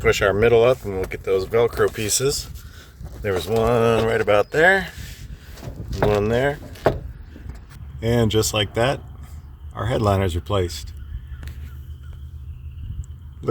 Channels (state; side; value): identical; both; correlation 1.00